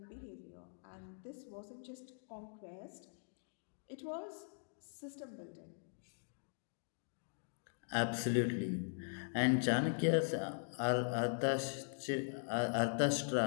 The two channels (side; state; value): right; silent; digital silence